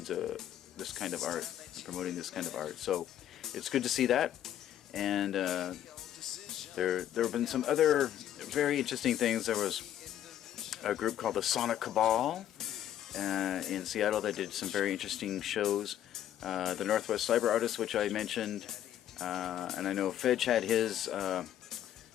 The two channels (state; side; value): quieter; right; 11.3 dB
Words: of art. So it's good to see that, and there have been some other very interesting things. There was a group called the Sonic Cabal in Seattle that did some very interesting shows. The Northwest Cyber Artists, which I mentioned, and I know Fedge had his